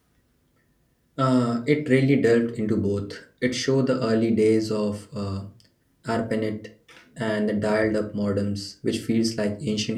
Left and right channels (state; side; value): identical; both; correlation 1.00